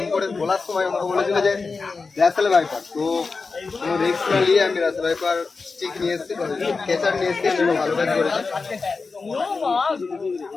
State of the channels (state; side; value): quieter; right; 4.3 dB